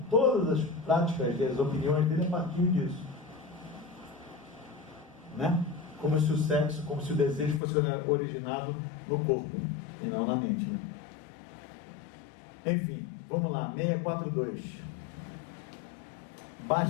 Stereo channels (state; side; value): drops out; right; at 7.6 s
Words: todas as práticas das opiniões dele a partir disso. Né? Como se o sexo, como se o desejo fosse originado no corpo e não na mente. Né? Enfim, vamos lá, 642.